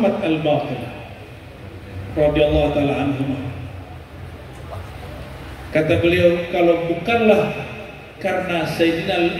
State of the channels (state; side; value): identical; both; correlation 1.00